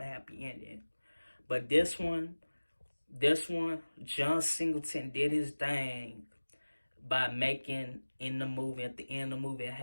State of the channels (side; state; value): both; inverted; correlation -1.00